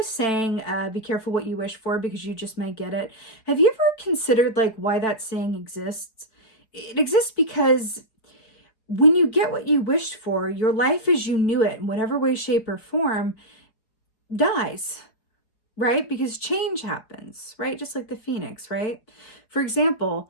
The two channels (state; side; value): late; right; 5.0 ms